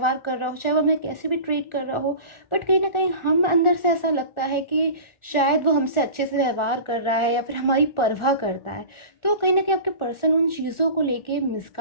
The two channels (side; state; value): right; late; 1.4 ms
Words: कर रहा हो, चाहे वो हमें कैसे भी ट्रीट कर रहा हो, बट कहीं ना कहीं हम अंदर से ऐसा लगता है कि शायद वो हमसे अच्छे से व्यवहार कर रहा है या फिर हमारी परवाह करता है। तो कहीं ना कहीं आपके पर्सन उन चीज़ों को लेके